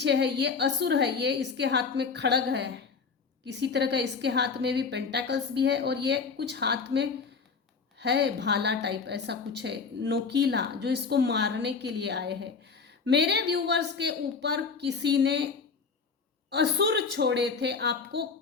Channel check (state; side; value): quieter; right; 5.1 dB